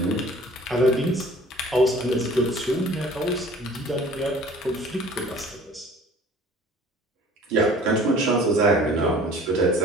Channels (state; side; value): normal; both; correlation 0.49